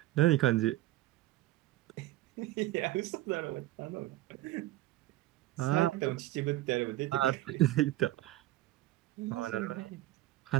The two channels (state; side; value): quieter; left; 16.1 dB